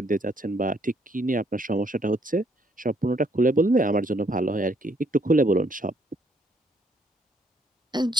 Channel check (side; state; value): both; normal; correlation 0.69